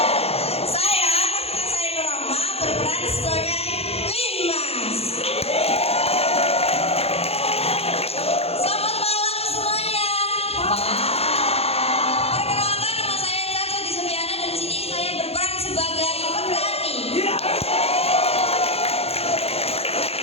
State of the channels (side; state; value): right; late; 0.29 ms